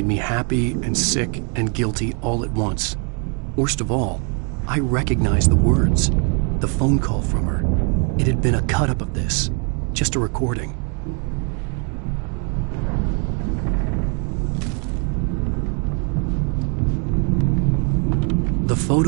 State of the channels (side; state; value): left; quieter; 38.2 dB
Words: me happy and sick and guilty all at once. Worst of all, I recognized the words. The phone call from her. It had been a cut-up of this. Just a recording. The